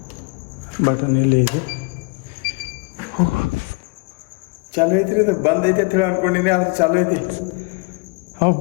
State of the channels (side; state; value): right; quieter; 32.0 dB